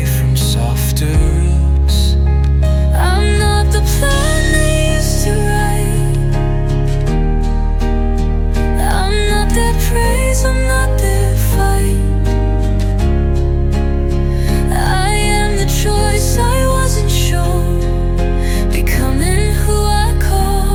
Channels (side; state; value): both; identical; correlation 1.00